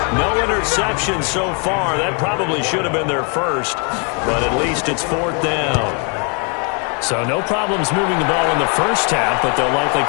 No interception so far. That probably should have been their first. But at least it's 4th down. So no problems moving the ball in the first half, but they'll likely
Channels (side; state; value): right; quieter; 36.2 dB